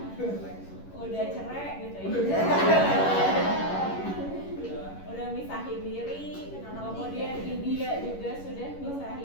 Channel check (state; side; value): late; right; 11 ms